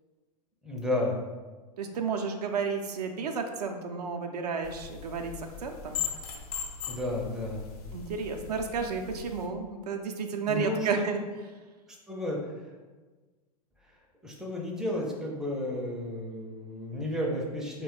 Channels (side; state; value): both; normal; correlation 0.12